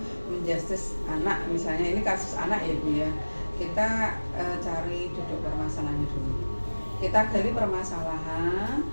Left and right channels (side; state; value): both; inverted; correlation -1.00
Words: menjustis anak. Misalnya ini kasus anak ya Bu ya, kita cari duduk permasalahannya dulu, kita gali permasalahan.